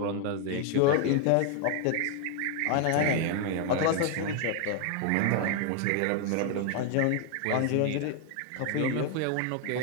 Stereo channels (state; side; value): different; both; correlation 0.01